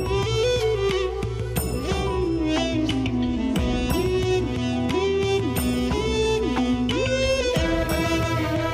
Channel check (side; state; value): both; identical; correlation 1.00